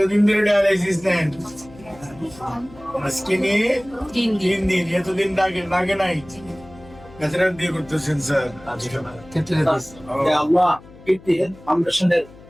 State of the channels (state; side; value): noise; left; hum, 21 dB below the sound